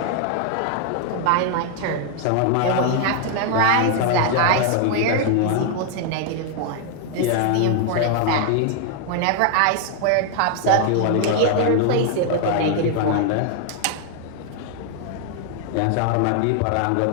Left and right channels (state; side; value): different; both; correlation 0.00